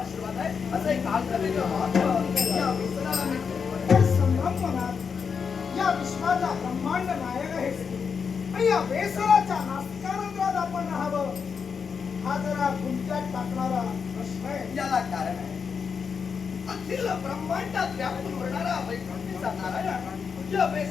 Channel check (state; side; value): quieter; right; 6.1 dB